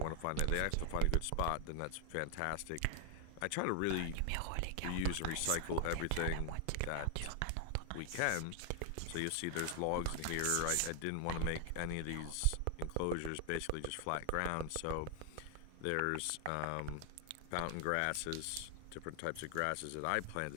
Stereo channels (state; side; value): different; both; correlation 0.00